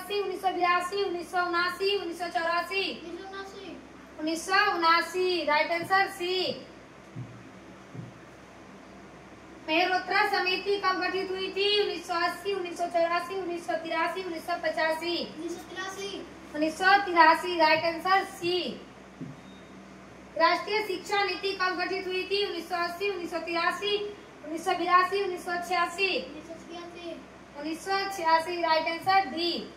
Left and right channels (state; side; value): identical; both; correlation 1.00